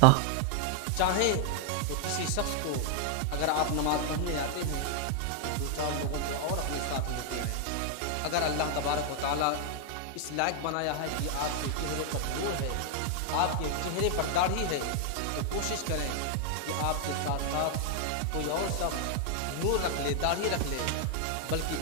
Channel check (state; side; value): different; both; correlation 0.00